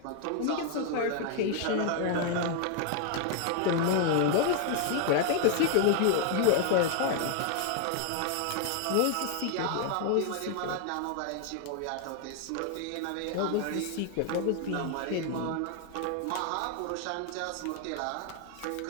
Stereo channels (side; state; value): both; different; correlation 0.00